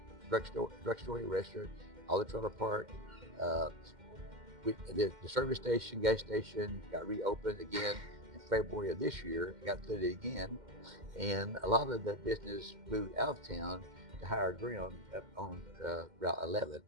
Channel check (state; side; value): late; left; 2.1 ms